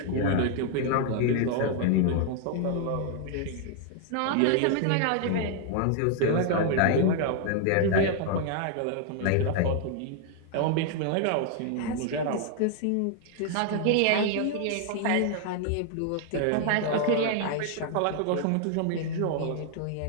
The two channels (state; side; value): different; both; correlation 0.00